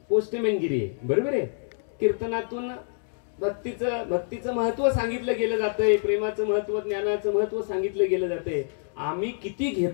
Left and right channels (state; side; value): silent; right; digital silence